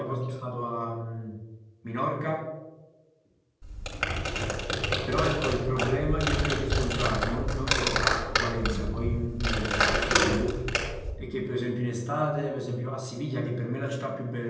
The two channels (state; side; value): identical; both; correlation 1.00